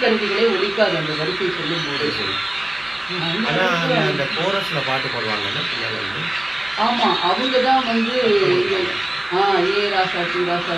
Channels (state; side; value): noise; right; hum, 29 dB below the sound